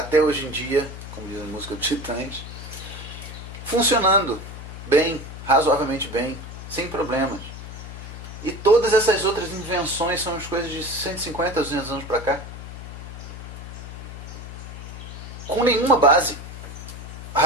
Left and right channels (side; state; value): left; noise; hum, 11 dB below the sound